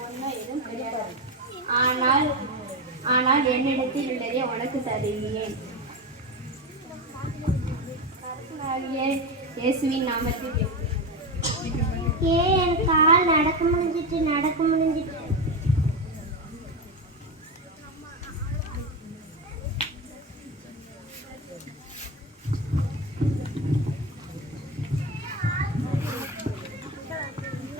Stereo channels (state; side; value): normal; both; correlation 0.16